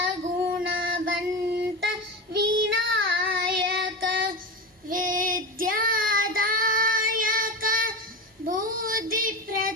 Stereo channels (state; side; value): normal; both; correlation 0.21